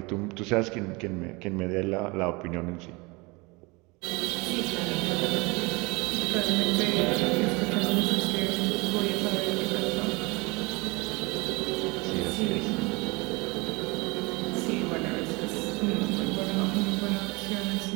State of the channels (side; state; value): left; quieter; 25.9 dB